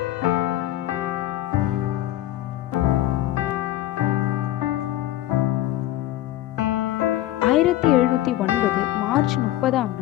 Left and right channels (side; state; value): right; quieter; 14.5 dB